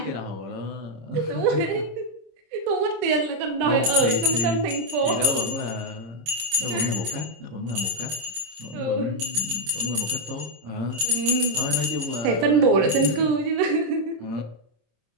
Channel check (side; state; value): left; late; 26 ms